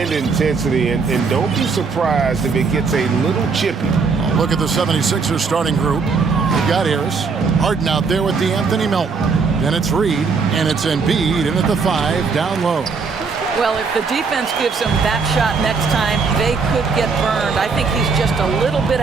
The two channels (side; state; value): left; quieter; 4.9 dB